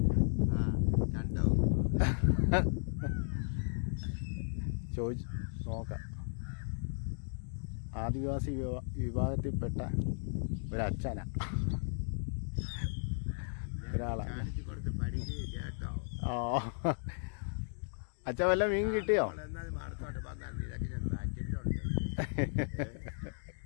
ചോദിച്ചു നോക്കാം. ആദിവാസി വിഭാഗത്തിൽപ്പെട്ട ഒരച്ഛനാ, ഒരാളാണ്. അച്ഛൻ വല്ല മീൻ കിട്ടിയോ?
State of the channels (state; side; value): silent; right; digital silence